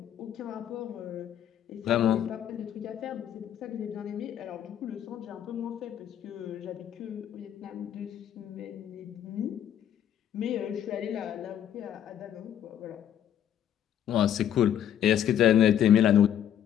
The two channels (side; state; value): right; quieter; 10.2 dB